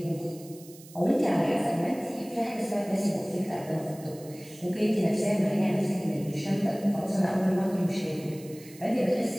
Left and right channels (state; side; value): noise; right; hiss, 20 dB below the sound